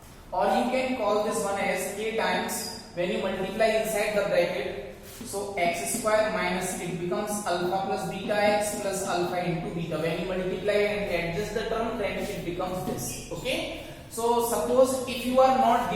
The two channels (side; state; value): both; identical; correlation 1.00